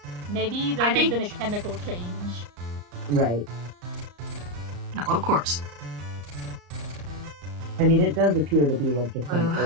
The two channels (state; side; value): late; left; 34 ms